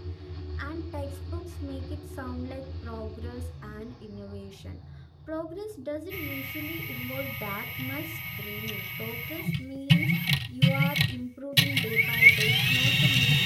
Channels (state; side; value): identical; both; correlation 1.00